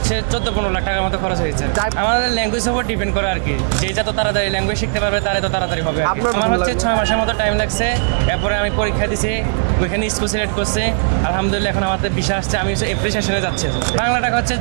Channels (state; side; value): silent; left; 67 dB below the other